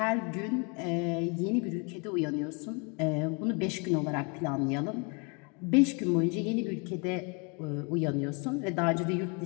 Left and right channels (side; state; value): right; quieter; 33.7 dB